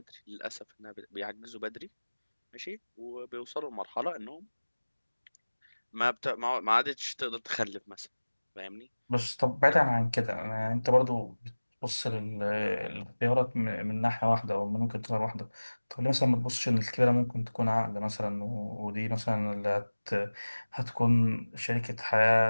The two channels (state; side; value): inverted; both; correlation -1.00